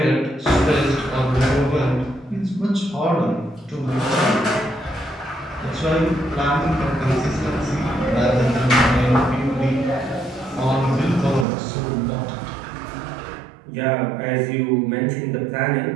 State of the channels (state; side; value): drops out; left; at 11.5 s